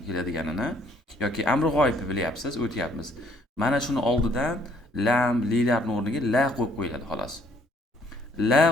keladiganini yoki amri g'oyibni bilyapsiz, o'tyapmiz. Mana shuni oldidan lam, lilarning o'rniga la qo'yib qo'yiladi xolos. La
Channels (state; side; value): normal; both; correlation 0.65